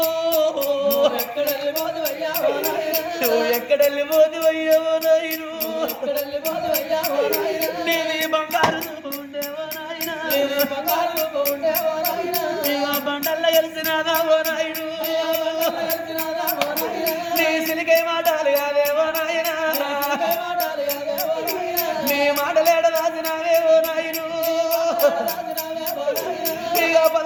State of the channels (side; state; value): both; identical; correlation 1.00